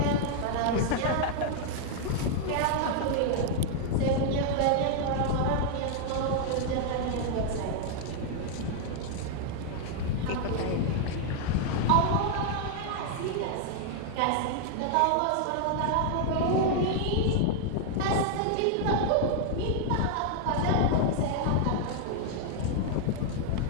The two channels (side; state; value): both; different; correlation 0.00